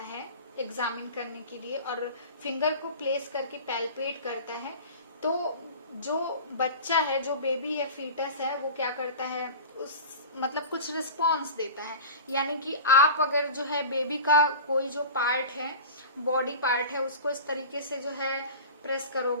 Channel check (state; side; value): inverted; both; correlation -0.35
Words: है एग्जामिन करने के लिए, और फिंगर को प्लेस करके पैल्पेट करता है, तो जो बच्चा है, जो बेबी है, फीटस है, वो क्या करता है, उस मतलब कुछ रिस्पॉन्स देता है। यानी कि आप अगर जो है बेबी का कोई जो पार्ट है, बॉडी पार्ट है, उसको इस तरीके से जो है प्रेस